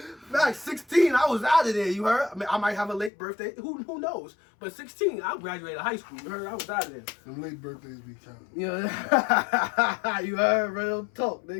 Facts, 16, I was out of there, you heard? I mean, I might have a late birthday. Who knows? But 16, I graduated high school. You heard? I was out of there. Them late birthdays be counting. Yeah. You heard? Real talk,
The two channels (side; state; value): right; drops out; at 3.1 s